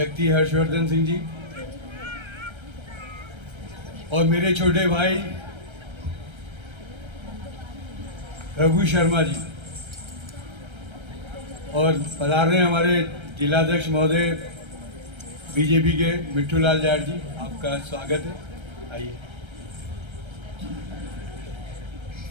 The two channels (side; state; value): left; late; 1.3 ms